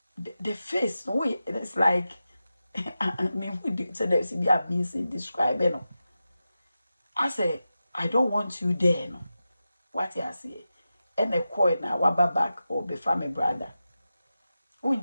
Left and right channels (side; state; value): both; inverted; correlation -0.92